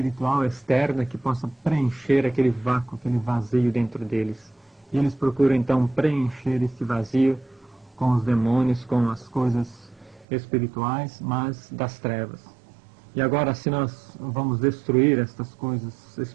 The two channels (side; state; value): left; drops out; at 10.2 s